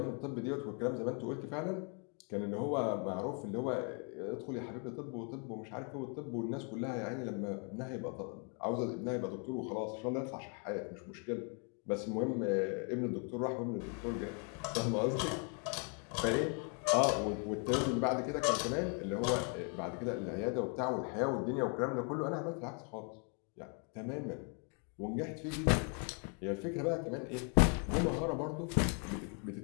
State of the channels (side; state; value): right; quieter; 38.2 dB